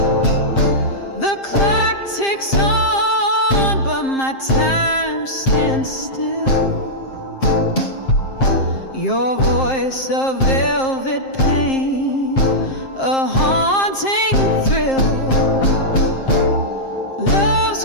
The clock ticks on, but my time stands still. Your voice, a velvet pain, a haunting thrill.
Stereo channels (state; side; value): late; right; 7.5 ms